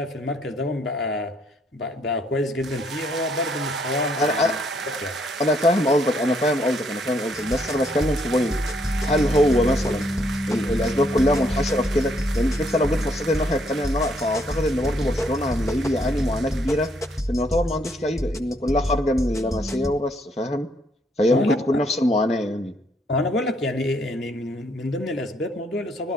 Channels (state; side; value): normal; both; correlation 0.71